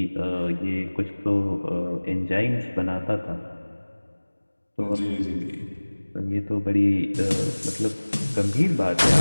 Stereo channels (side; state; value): both; inverted; correlation -1.00